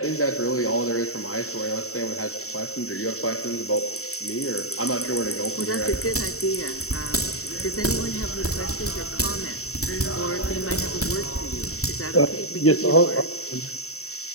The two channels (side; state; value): right; late; 0.64 ms